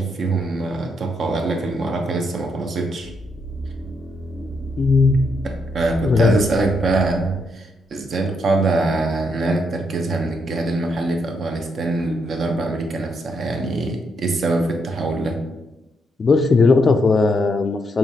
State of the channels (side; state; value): both; normal; correlation 0.78